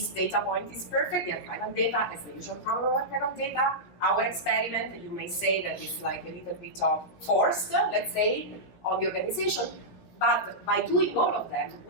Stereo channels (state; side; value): late; right; 16 ms